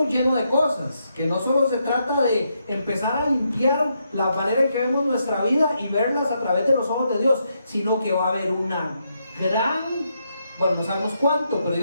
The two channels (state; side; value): inverted; both; correlation -0.80